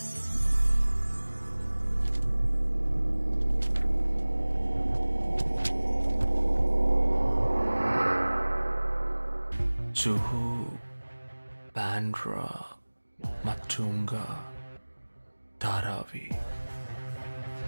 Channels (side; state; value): both; inverted; correlation -1.00